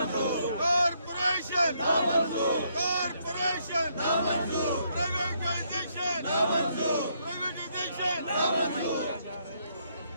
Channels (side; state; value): both; inverted; correlation -0.73